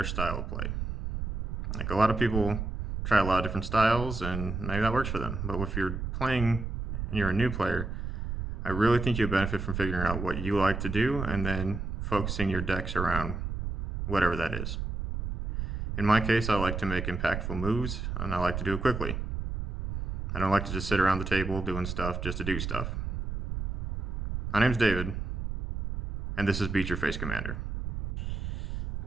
style of play. Like a lot of people try a lot of different styles, and maybe that works for them. But if you're playing and you're a new player, I really think you'll benefit from figuring out what you like to do and then focusing your decks around whatever that is. In my case, I like to make impactful moves, and I like to do it quickly. I don't like to just sit around the table doing stuff just to do stuff. My name's David, and this is Beat Your Face Commander.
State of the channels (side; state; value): right; noise; rumble, 4 dB below the sound